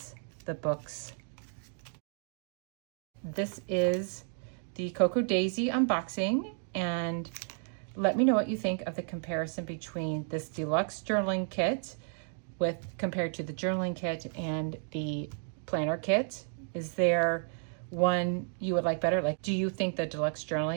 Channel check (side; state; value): left; silent; 56 dB below the other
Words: the books. This is the Cocoa Daisy unboxing, and let me know what you think of the comparison between this deluxe journaling kit compared to the journaling kit and the planner kit. Is there one you would like better? Like, do you think the deluxe